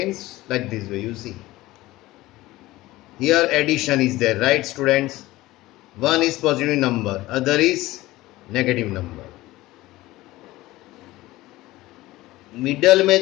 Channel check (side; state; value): right; quieter; 18.0 dB